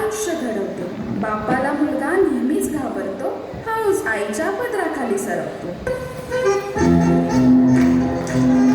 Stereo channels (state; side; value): identical; both; correlation 1.00